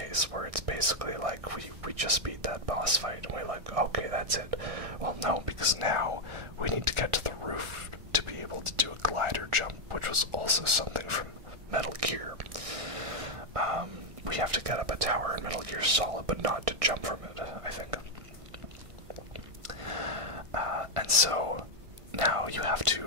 where it's basically like we just beat that boss fight, and we're like, okay, that's it. Well, no, because now we need to get to the roof to be able to do a glider jump, which was also something from Metal Gear. We have to get up a tower in Metal Gear Solid, but not to jump from it, I think. And so now you have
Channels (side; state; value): left; late; 1.6 ms